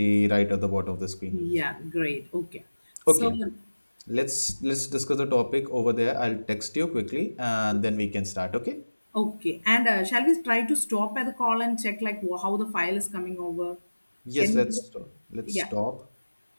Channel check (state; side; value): inverted; both; correlation -1.00